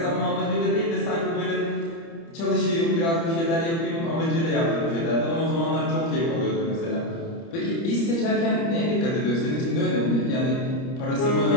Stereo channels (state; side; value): late; right; 30 ms